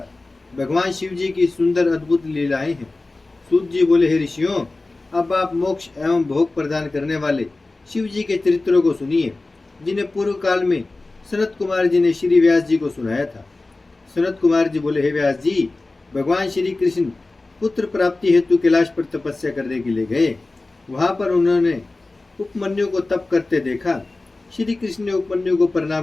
भगवान शिव जी की सुंदर अद्भुत लीलाएं हैं। सूत जी बोले, हे ऋषियों, अब आप मोक्ष एवं भोग प्रदान करने वाले शिव जी के चरित्रों को सुनिए, जिन्हें पूर्व काल में सनत कुमार जी ने श्री व्यास जी को सुनाया था। सनत कुमार जी बोले, हे व्यास जी, भगवान श्री कृष्ण पुत्र प्राप्ति हेतु कैलाश पर तपस्या करने के लिए गए। वहां पर उन्होंने उपमन्यु को तप करते देखा। श्री कृष्ण ने उपमन्यु को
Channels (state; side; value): quieter; right; 3.2 dB